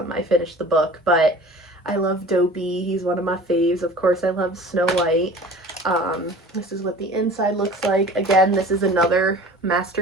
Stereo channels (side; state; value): both; normal; correlation 0.42